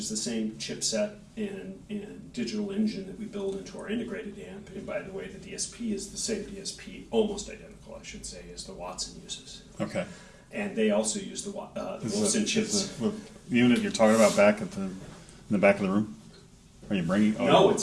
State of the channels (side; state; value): both; identical; correlation 1.00